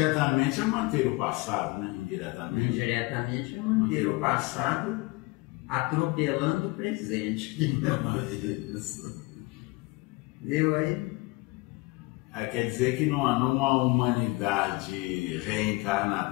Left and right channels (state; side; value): quieter; right; 23.7 dB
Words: é manter o passado, né? Indiretamente é manter o passado atropelando o presente. Entendeu aí? Aí quer dizer que numa humanidade